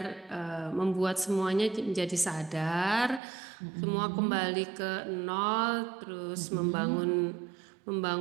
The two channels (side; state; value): left; drops out; at 3.2 s